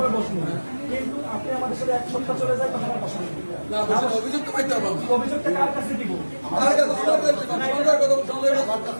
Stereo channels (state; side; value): inverted; both; correlation -1.00